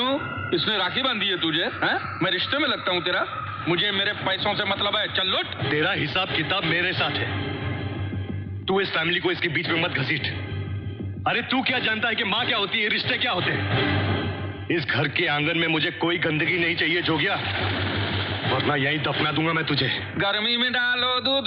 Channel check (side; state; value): both; identical; correlation 1.00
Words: इसने राखी बांधी है तुझे? हैं? मैं रिश्ते में लगता हूँ तेरा? मुझे मेरे पैसों से मतलब है, चल लूट। तेरा हिसाब किताब मेरे साथ है, तू इस फैमिली को इसके बीच में मत घसीट। अरे तू क्या जानता है कि माँ क्या होती है, रिश्ते क्या होते हैं? इस घर के आंगन में मुझे कोई गंदगी नहीं चाहिए जोगिया, वरना यहीं दफना दूंगा मैं तुझे। गर्मी में डालो